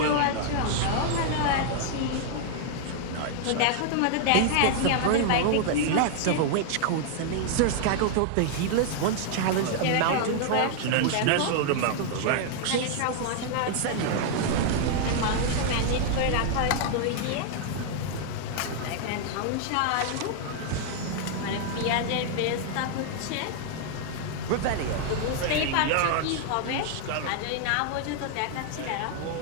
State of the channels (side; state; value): both; different; correlation 0.00